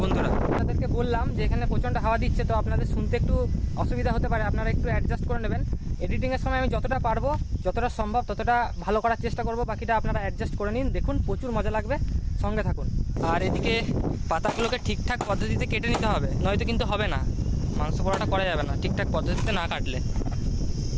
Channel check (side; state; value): both; identical; correlation 1.00